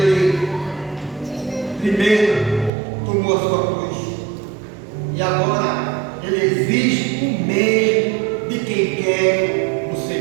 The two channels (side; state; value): left; drops out; at 2.7 s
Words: primeiro tomou a sua cruz e agora ele exige o mesmo de quem quer o